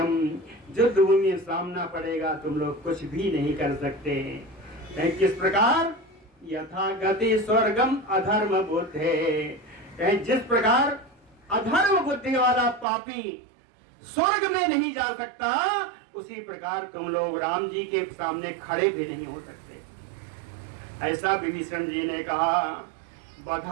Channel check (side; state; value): left; drops out; at 12.9 s